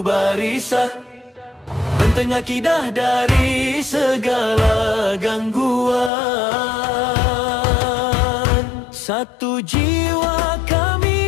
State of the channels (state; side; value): drops out; right; at 6.1 s